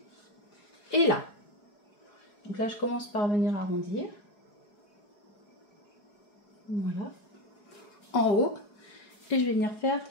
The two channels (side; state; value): right; late; 4.8 ms